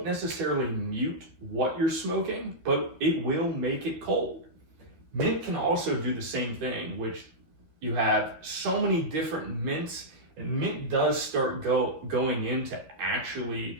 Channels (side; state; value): left; late; 12 ms